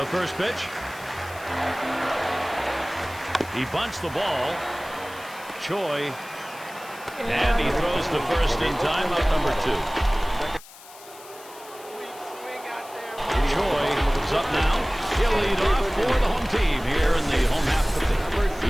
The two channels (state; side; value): noise; left; hiss, 19 dB below the sound